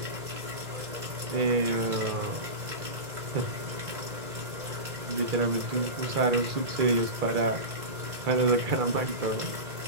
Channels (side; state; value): left; late; 2.0 ms